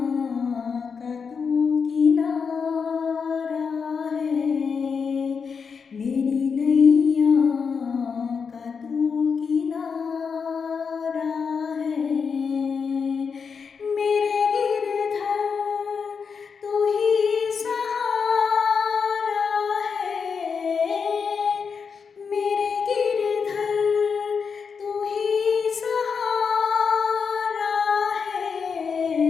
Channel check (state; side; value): quieter; right; 5.9 dB